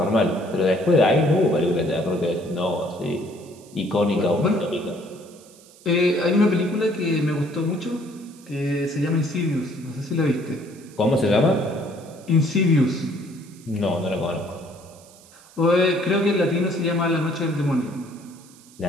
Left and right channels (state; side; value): noise; right; hiss, 24 dB below the sound